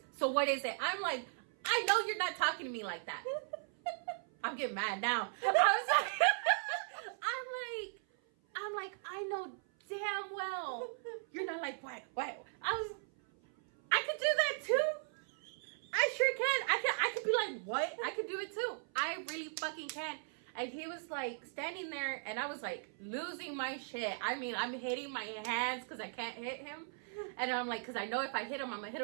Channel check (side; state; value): left; silent; 53 dB below the other